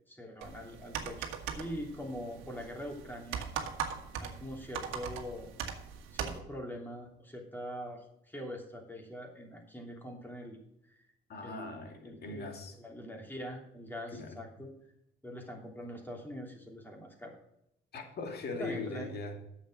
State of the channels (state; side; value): normal; both; correlation 0.40